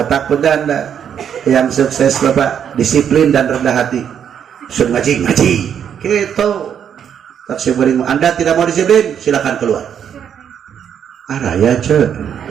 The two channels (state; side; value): quieter; left; 8.5 dB